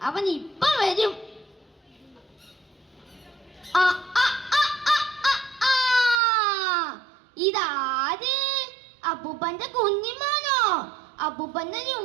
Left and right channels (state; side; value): drops out; left; at 6.2 s